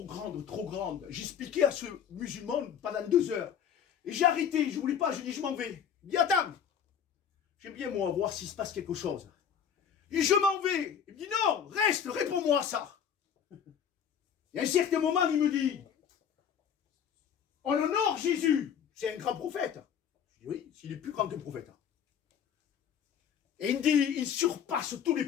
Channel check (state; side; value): quieter; right; 8.1 dB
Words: grande, trop grande. J'expliquais à ce musulman pendant 2 heures. Et j'ai arrêté, je ne voulais pas, je dis je m'en vais. Il dit attends, j'aime bien moi voir s'il se passe quelque chose. Et je m'en vais. Il me dit non, reste, réponds-moi à ça. Et à un certain moment, il me dit on honore Jésus, c'est un grand prophète. Je dis oui, s'il est plus grand qu'un prophète. Et il me dit il surpasse tous les